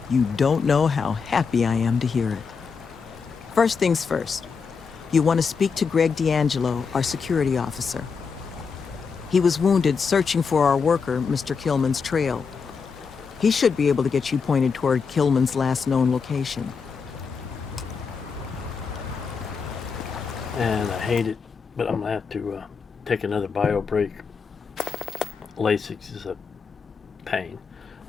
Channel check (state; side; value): quieter; right; 5.5 dB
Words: You don't know how happy I am to hear it. First things first, you want to speak to Greg D'Angelo, our security officer. He was wounded searching for our worker, Mr. Killman's trail. He should be able to get you pointed toward Killman's last known location. And I hate it, but I'm gonna have to take another bio break. Lasix is a pain.